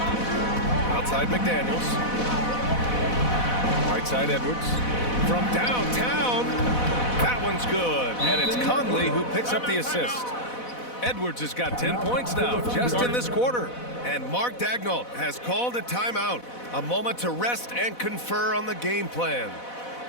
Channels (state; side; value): late; right; 4.1 ms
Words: Outside McDaniels. Right side Edwards. From downtown. That one's good. And it's Conley who picks up the assist. Edwards has got 10 points now just in this quarter. And Mark Daigneault has called a timeout. A moment to rest and confer on the game plan.